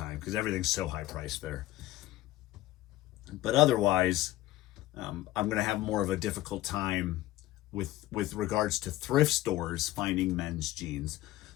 because everything's so high priced there. But otherwise, I'm going to have more of a difficult time with regards to thrift stores finding men's jeans.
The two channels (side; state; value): right; quieter; 16.1 dB